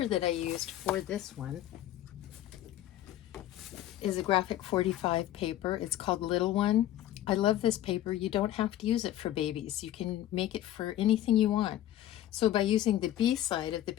that I used for this one is a graphic 45 paper. It's called Little One. I love this paper. You don't have to use it for babies. You can make it for anything you want. So by using the B side of the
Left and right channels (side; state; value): right; quieter; 13.0 dB